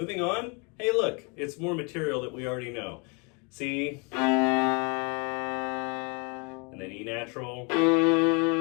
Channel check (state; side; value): quieter; right; 32.6 dB